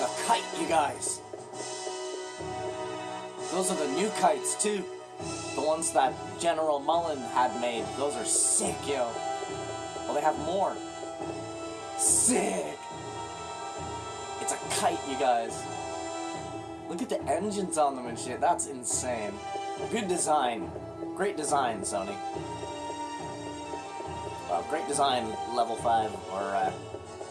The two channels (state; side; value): identical; both; correlation 1.00